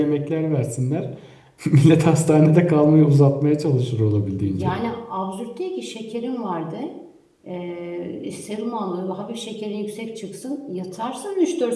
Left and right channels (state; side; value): identical; both; correlation 1.00